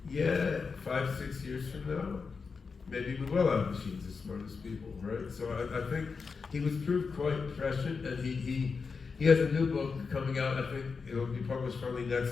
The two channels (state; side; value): quieter; right; 5.0 dB